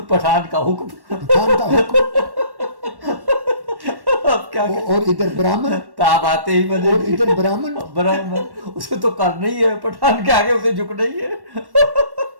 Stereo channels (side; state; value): left; late; 1.1 ms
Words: पठान का हुक्म। पठान का हुक्म। अब क्या और इधर ब्राह्मण, ताब आते ही बने। और इधर ब्राह्मण। उसे तो करना ही है, पठान के आगे उसे झुकना ही है।